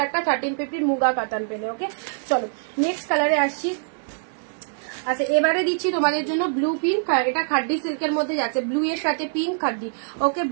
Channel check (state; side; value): silent; left; digital silence